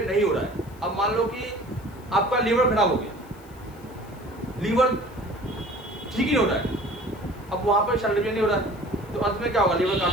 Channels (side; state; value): left; noise; hiss, 26 dB below the sound